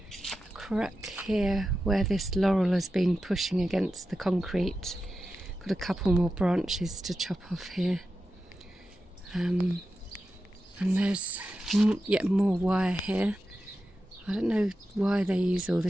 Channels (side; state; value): both; normal; correlation 0.91